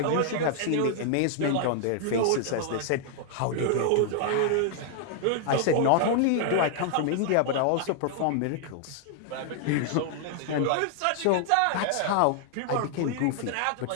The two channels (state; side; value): different; both; correlation 0.00